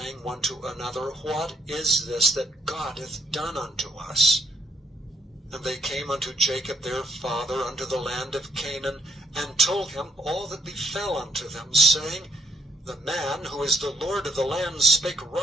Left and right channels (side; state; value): both; normal; correlation 0.70